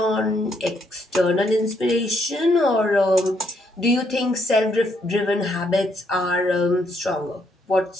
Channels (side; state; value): both; normal; correlation 0.74